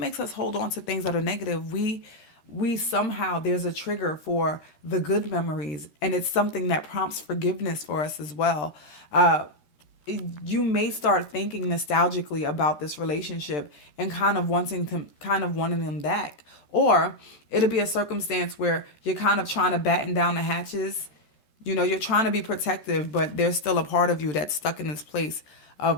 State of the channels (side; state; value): right; late; 13 ms